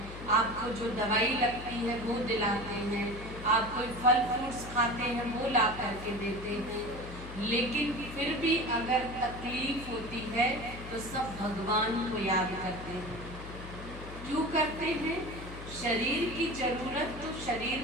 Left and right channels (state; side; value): noise; left; hum, 12 dB below the sound